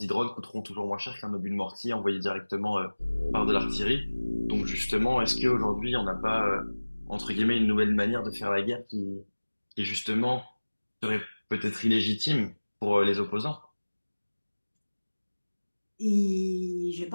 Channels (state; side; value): inverted; both; correlation -1.00